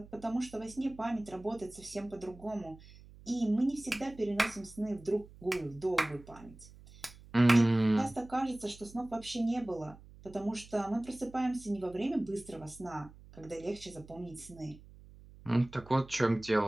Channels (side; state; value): right; noise; hum, 20 dB below the sound